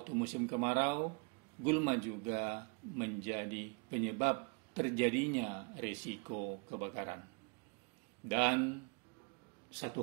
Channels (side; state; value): left; quieter; 33.0 dB